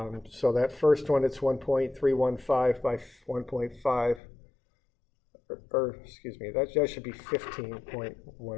that first one, it's 1.315 by 1.5, or excuse me, that should be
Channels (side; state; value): right; drops out; at 4.2 s